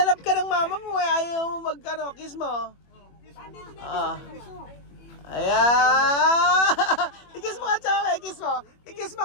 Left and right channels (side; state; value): right; late; 21 ms